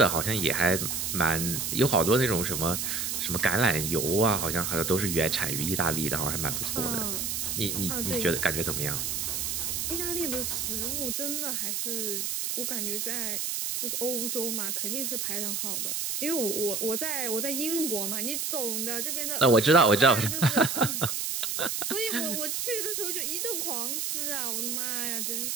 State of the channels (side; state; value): right; noise; hiss, 1 dB below the sound